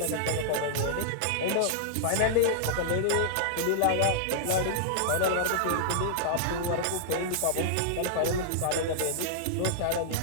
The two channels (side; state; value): both; different; correlation -0.02